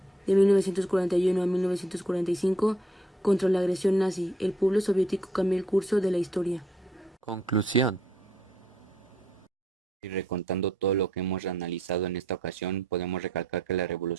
De 1941 a 1945, contra la agresión nazi, el pueblo soviético cambió el curso de la historia. Conclusión. Y recontando todo lo que hemos analizado en esta ocasión, podemos recalcar que la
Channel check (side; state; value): both; normal; correlation 0.69